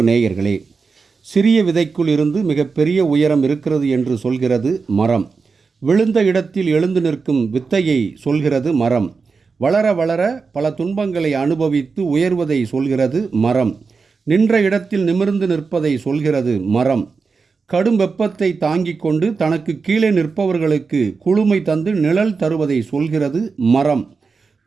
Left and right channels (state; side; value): quieter; left; 4.8 dB